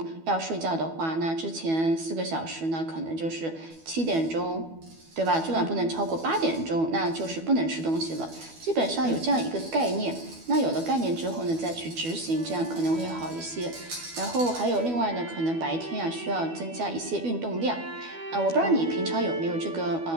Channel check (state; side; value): late; left; 12 ms